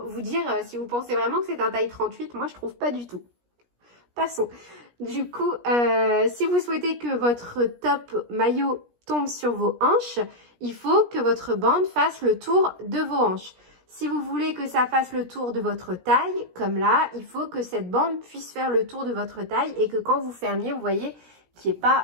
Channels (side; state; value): left; late; 17 ms